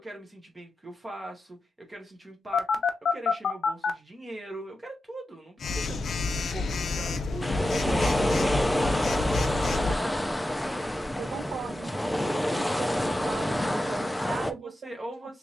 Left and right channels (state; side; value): normal; both; correlation 0.91